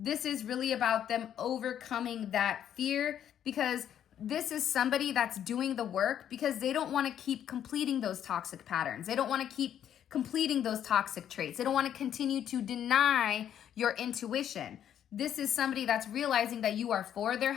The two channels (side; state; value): right; quieter; 9.9 dB